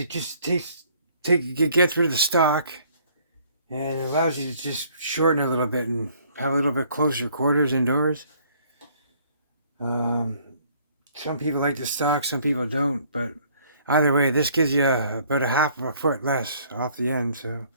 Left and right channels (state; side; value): inverted; both; correlation -0.60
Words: just it gets rid of the stock and it allows you to just shorten it a little bit and have a little bit closer quarters indoors. Some people like the stock, some people don't, but either way, this gives you about a half of a foot less off the end. So,